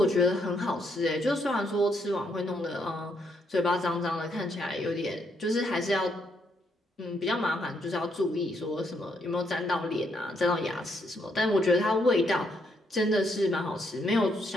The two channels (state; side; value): normal; both; correlation 0.75